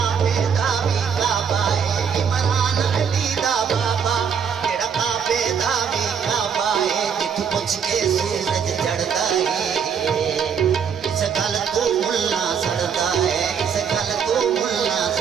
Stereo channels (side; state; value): left; quieter; 7.1 dB